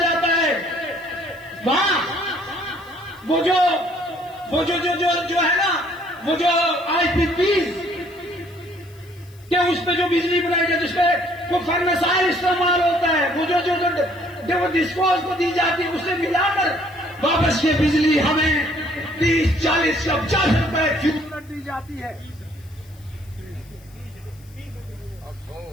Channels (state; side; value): noise; left; hiss, 28 dB below the sound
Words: है। वहां वो जो है ना, वो जो IPP के उस पे जो बिजली बनाई जाती है, जिसपे वो फर्नेसाइल इस्तेमाल होता है, वो जो डिस्पोज को दी जाती है, उससे मिलाकर वापस ये बिजली हमें 30, 40 या 50 रुपए फ्यूल दी जाती है।